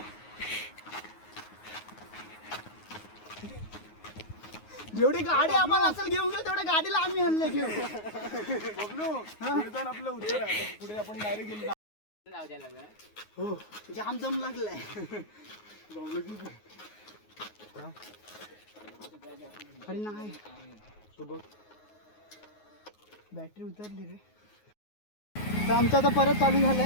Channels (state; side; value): late; right; 9.5 ms